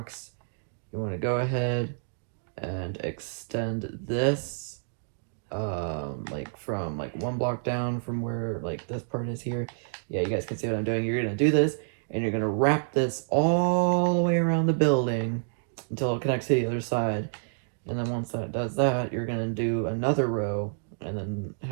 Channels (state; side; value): silent; left; digital silence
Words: You want to go ahead and extend this like from like 1 block down from where like this part is here. Yeah, you guys can see what I'm doing. You're gonna do this, and you're gonna wrap this all the way around the building until it connects to the other side. And then once that does that, you're gonna do another row and then